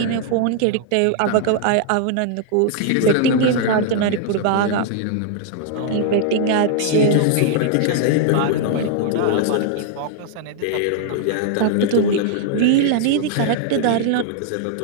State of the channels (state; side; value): different; both; correlation 0.00